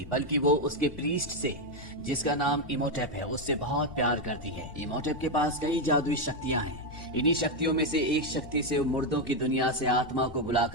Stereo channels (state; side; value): normal; both; correlation 0.05